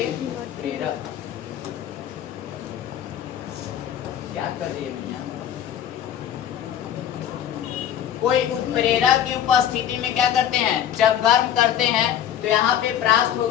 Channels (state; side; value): quieter; right; 10.2 dB